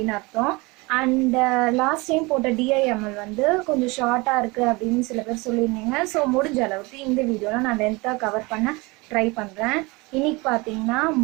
அர்த்தம். அண்ட் லாஸ்ட் டைம் போட்ட DIML வந்து கொஞ்சம் ஷார்ட்டாக இருக்குது அப்படின்னு சில பேர் சொல்லியிருந்தீங்க. ஸோ முடிஞ்ச அளவுக்கு இந்த வீடியோவில் நான் லென்த்தாக கவர் பண்ண ட்ரை பண்ணுறேன். இன்னைக்கு பார்த்தீங்கன்னா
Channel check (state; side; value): quieter; left; 25.1 dB